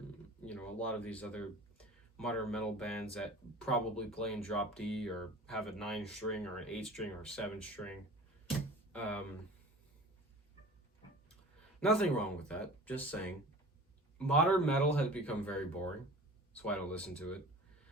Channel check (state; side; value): normal; both; correlation 0.40